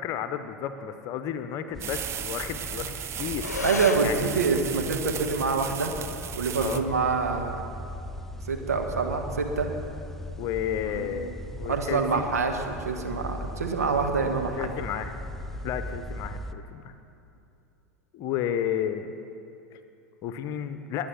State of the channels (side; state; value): both; normal; correlation -0.08